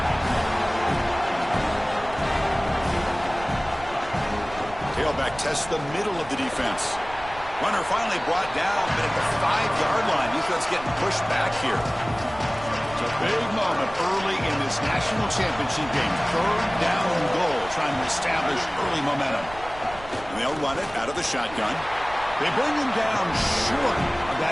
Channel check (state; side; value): noise; right; rumble, 16 dB below the sound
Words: Tailback tests the middle of the defense. Runner finally brought down, but at the 5-yard line, defense getting pushed back here. It's a big moment early in this national championship game. Third down and goal, trying to establish early momentum. And they'll run it out of the shotgun. They bring him down short of